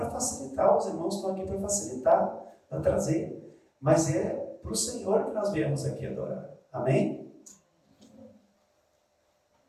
facilitar, os irmãos estão aqui para facilitar, para trazer. Mas é para o Senhor que nós viemos aqui adorar. Amém?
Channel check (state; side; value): identical; both; correlation 1.00